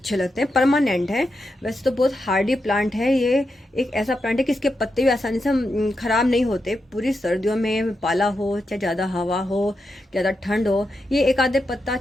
लगते हैं, परमानेंट है। वैसे तो बहुत हार्डी प्लांट है ये, एक ऐसा प्लांट है कि इसके पत्ते भी आसानी से ख़राब नहीं होते। पूरी सर्दियों में पाला हो चाहे ज़्यादा हवा हो, ज़्यादा ठंड हो, ये एक आधे पत्ता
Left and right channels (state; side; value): normal; both; correlation 0.86